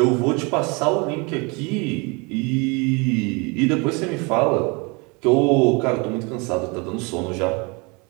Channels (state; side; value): quieter; left; 29.5 dB